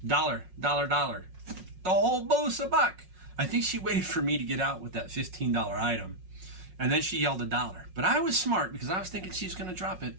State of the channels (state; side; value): late; left; 5.5 ms